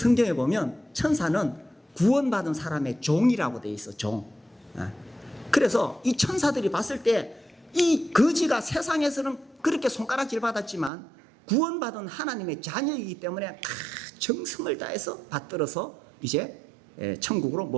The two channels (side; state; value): left; drops out; at 10.9 s